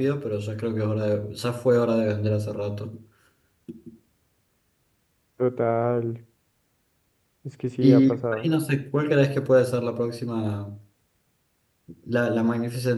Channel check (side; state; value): both; identical; correlation 1.00